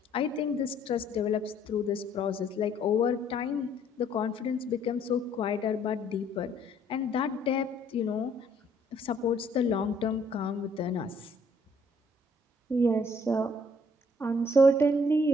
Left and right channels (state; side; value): normal; both; correlation 0.63